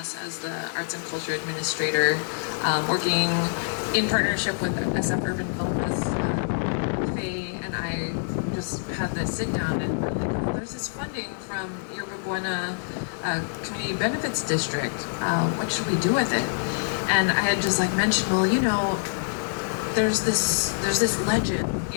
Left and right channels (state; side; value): silent; right; digital silence